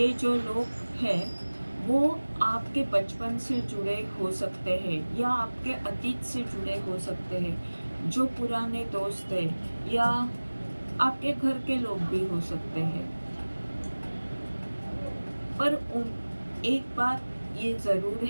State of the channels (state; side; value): inverted; both; correlation -1.00